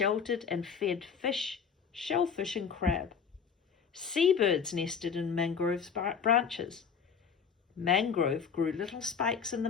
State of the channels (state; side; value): quieter; right; 6.5 dB